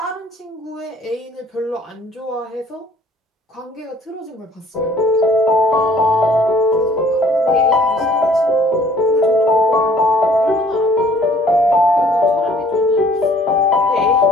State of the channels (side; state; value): both; normal; correlation 0.56